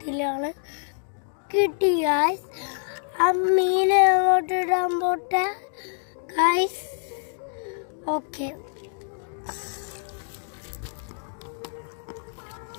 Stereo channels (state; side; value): silent; right; digital silence